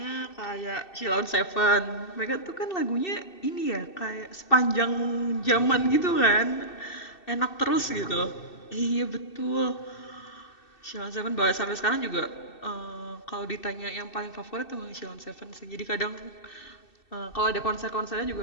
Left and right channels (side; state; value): right; late; 2.6 ms